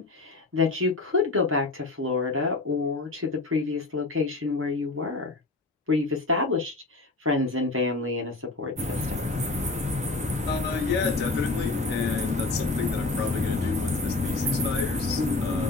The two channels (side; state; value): right; quieter; 3.4 dB